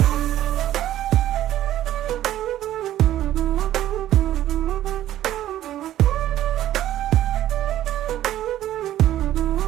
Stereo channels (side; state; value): left; quieter; 12.9 dB